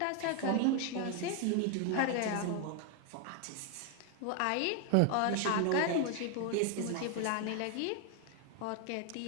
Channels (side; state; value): both; different; correlation 0.01